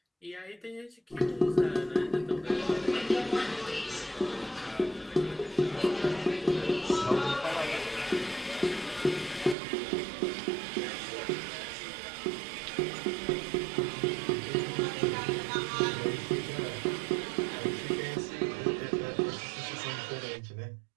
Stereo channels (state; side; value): drops out; left; at 9.6 s